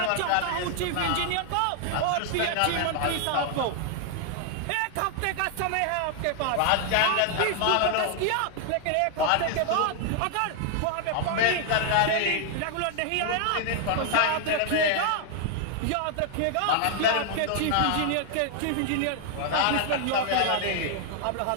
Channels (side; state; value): both; different; correlation 0.00